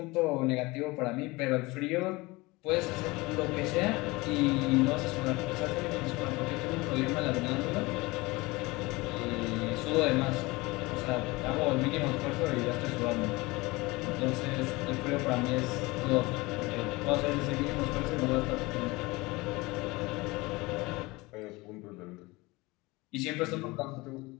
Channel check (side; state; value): right; quieter; 22.7 dB